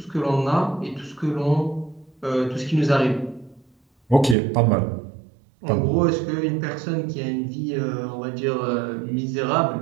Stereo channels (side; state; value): left; drops out; at 4.4 s